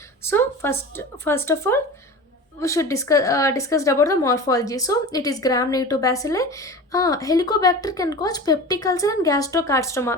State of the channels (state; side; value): normal; both; correlation 0.33